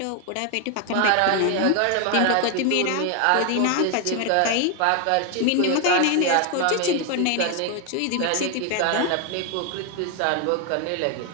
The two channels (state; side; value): different; both; correlation 0.01